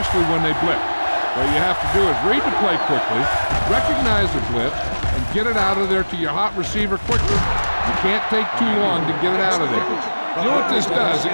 when they blitz. What you have to do is read the play quickly, recognize the blitz, and get it out of there to your hot receiver quickly. You can't take too long to get it out of there. You know what this does? It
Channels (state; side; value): inverted; both; correlation -1.00